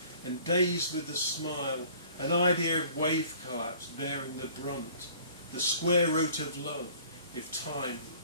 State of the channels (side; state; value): both; inverted; correlation -0.52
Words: and dazed with the smile, an idea of wave collapse bearing the brunt, the square root of love, if time